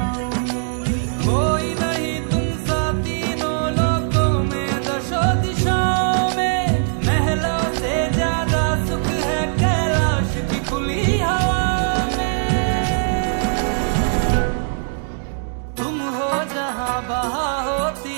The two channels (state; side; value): silent; left; digital silence